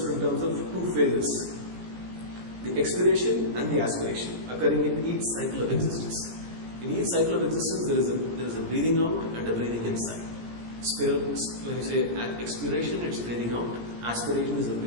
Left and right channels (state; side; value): late; left; 17 ms